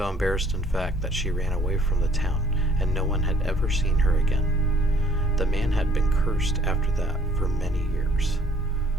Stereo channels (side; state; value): both; normal; correlation 0.59